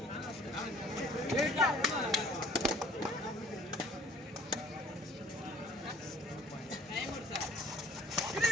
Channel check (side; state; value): both; normal; correlation 0.54